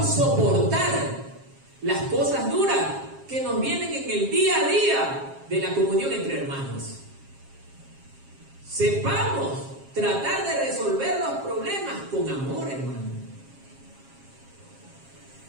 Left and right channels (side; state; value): left; late; 7.4 ms